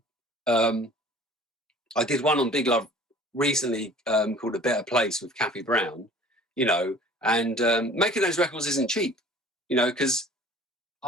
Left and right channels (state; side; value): normal; both; correlation 0.48